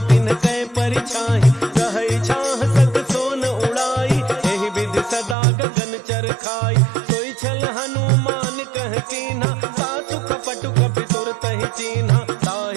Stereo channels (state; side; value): drops out; left; at 5.4 s